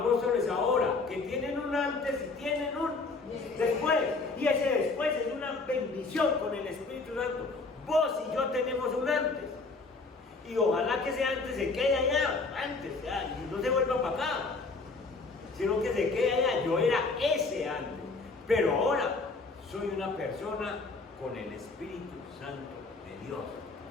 ahora? Que tienen un antes y tienen un después. Y ese después es una bendición con el Espíritu Santo. Vos y yo tenemos un antes. Y ojalá que ese antes se quede allá, antes, ya, y no se vuelva para acá, sino que se quede allá. Yo era ese antes, pero ahora soy una persona con el Espíritu Santo de Dios.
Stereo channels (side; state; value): right; quieter; 3.8 dB